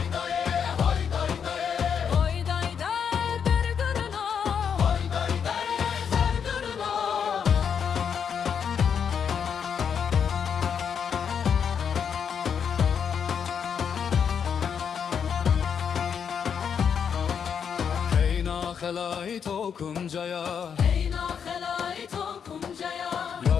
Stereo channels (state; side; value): quieter; right; 7.3 dB